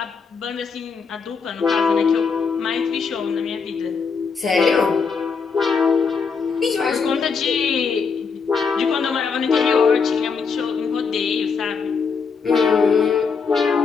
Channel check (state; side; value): quieter; right; 5.4 dB